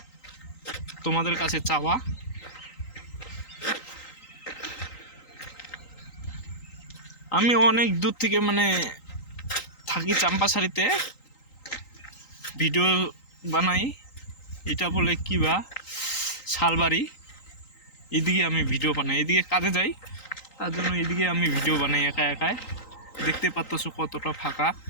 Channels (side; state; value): right; late; 3.9 ms